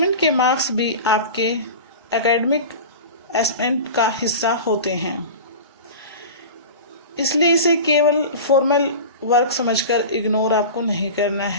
के मार्क्स भी आपके एकेडमिक असेसमेंट का हिस्सा होते हैं, इसलिए इसे केवल फॉर्मल वर्क समझकर इग्नोर आपको नहीं करना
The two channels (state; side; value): inverted; both; correlation -0.32